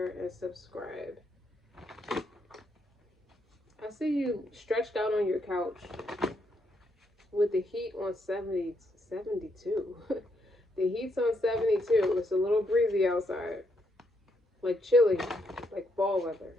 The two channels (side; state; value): both; normal; correlation 0.76